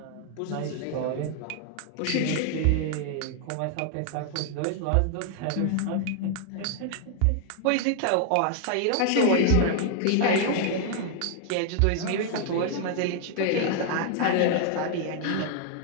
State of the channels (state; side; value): different; both; correlation 0.00